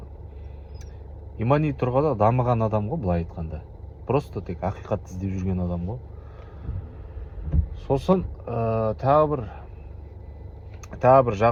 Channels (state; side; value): identical; both; correlation 1.00